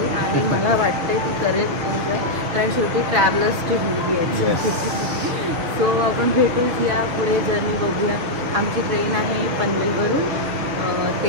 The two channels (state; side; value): late; left; 7.0 ms